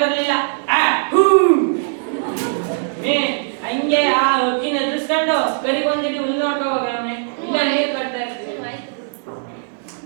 ಬರ್ಲಿಲ್ಲ. ಹಂಗೆ ಆ ಅಕ್ಕಿನ ಎದುರಿಸ್ಕೊಂಡು ಕರಿಗೊಂದಿಡಿ ಹುಲ್ಲು ನೋಡ್ಕೊ ಹೋಗಮ್ಮಿ. ಇಲ್ಲ ನೀರ್ ಕಟ್ತಾ ಇರ್ತೀವಿ.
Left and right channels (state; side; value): silent; left; 59 dB below the other